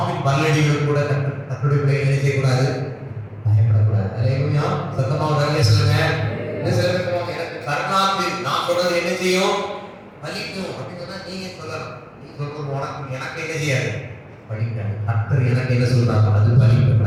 பல்லடிகள் கூட தன்னுடைய பிள்ளைகளை என்ன செய்யக்கூடாது? பயப்படக்கூடாது. அல்லேலூயா. சத்தமாக அல்லே சொல்லுங்க. இன்னும் சில பேர் சொல்லுவாங்க, எனக்கு கருணாந்தி நான் சொல்றது என்ன செய்யும்? பலிக்கும் அப்படின்னு சொன்னா நீங்க சொல்லலாம். நீ சொல்றது உனக்கு எனக்கு என்ன செய்யாது? படிக்காது. கர்த்தர் எனக்கு என்ன சொல்றாங்க? அது பலிக்கும்.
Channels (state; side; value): identical; both; correlation 1.00